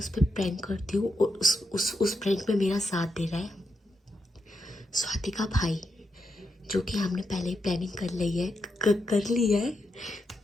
पर प्रैंक करती हूँ और उस प्रैंक में मेरा साथ दे रहा है स्वाति का भाई, जो कि हमने पहले ही प्लानिंग कर ली है कर ली है।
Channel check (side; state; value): both; normal; correlation 0.84